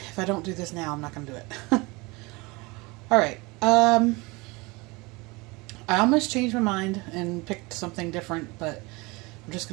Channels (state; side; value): quieter; left; 24.9 dB